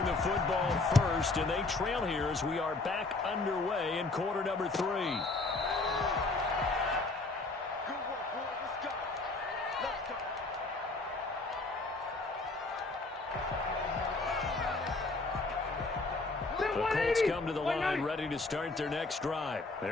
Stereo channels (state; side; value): quieter; right; 3.4 dB